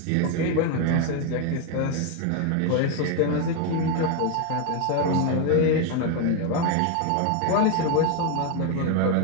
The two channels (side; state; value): both; different; correlation 0.01